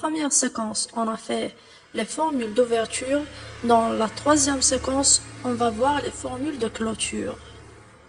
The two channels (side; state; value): both; identical; correlation 1.00